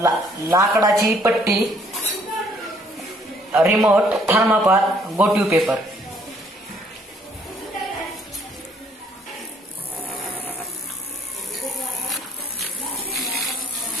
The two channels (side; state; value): both; normal; correlation 0.63